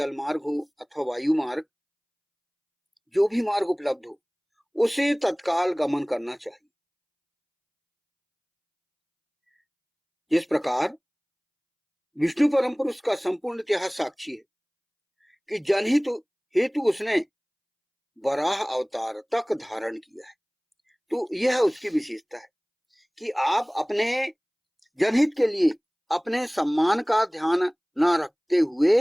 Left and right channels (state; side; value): identical; both; correlation 1.00